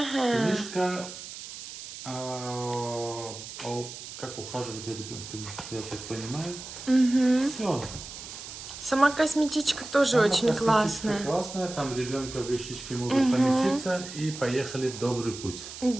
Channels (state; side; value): noise; right; hiss, 11 dB below the sound